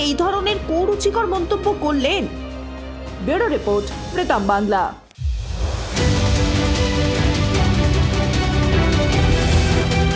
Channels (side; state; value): both; identical; correlation 1.00